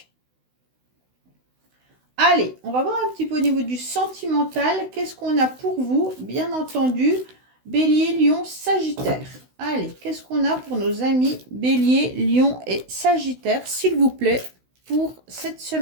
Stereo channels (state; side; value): late; left; 16 ms